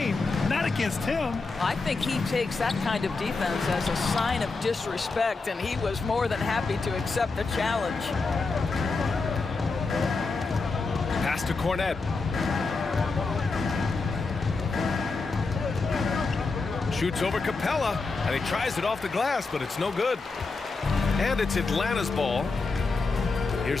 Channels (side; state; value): right; quieter; 4.0 dB